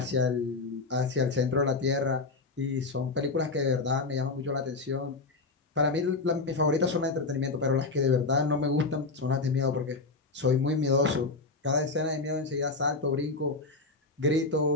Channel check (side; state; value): right; quieter; 3.7 dB